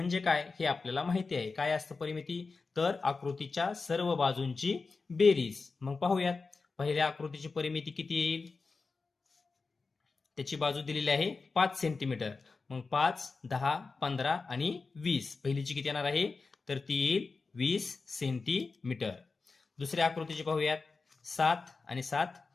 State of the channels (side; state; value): right; quieter; 4.2 dB